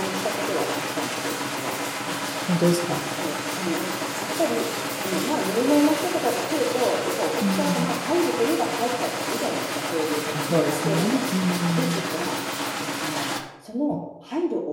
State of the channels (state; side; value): identical; both; correlation 1.00